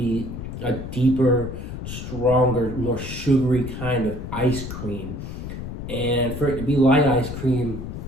a deeper, stronger, more sugary kind of ice cream. And for it to be light ice cream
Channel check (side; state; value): left; noise; rumble, 8 dB below the sound